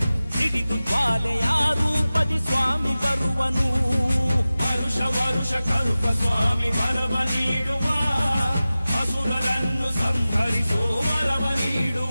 ಸಿಡಿದು ಜ್ವಾಲೆಯ ರೂಪದಿ ಸ್ವಾಮಿ ಬರುವನು ವರುಷ ವರುಷ ಕರುಪ ಸ್ವಾಮಿ ವರವ ನೀಡುವ ಅಸುರರನ್ನು ಸಂಹರಿಸೋ ವರವ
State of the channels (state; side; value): inverted; both; correlation -0.96